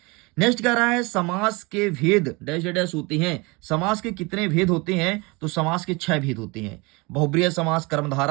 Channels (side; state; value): left; quieter; 26.3 dB